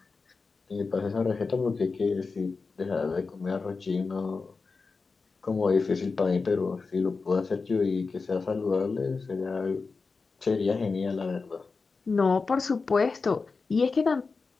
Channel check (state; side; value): quieter; right; 4.4 dB